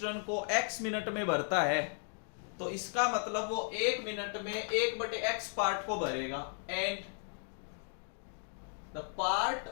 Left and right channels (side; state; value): right; silent; 54 dB below the other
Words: को x मिनट में भरता है तो इसका मतलब वो 1 मिनट में 1/x पार्ट को भरेगा। And the part